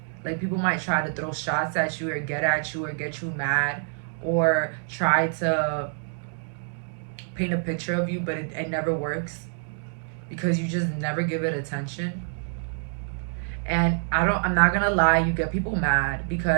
Like people might try to throw shots at you or get at you or get you mad or try to paint a picture of you, but it never works because you just never give it attention. And I'm not gonna lie, you get people mad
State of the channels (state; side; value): silent; left; 61 dB below the other